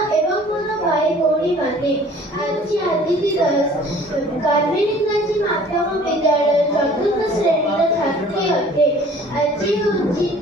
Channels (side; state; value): both; normal; correlation 0.51